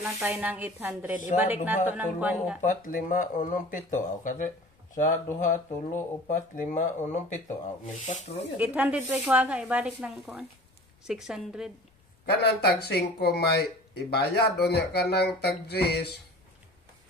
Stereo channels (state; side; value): normal; both; correlation 0.42